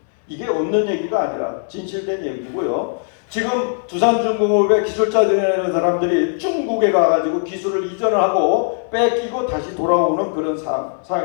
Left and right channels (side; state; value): right; silent; 66 dB below the other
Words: 이게 없는 얘기가 아니라 진실된 얘기고요. 지금 두산중공업의 기술자들이라는 사람들이 중국에 가가지고 기술을 이전을 하고 뺏기고 다시 돌아오는 그런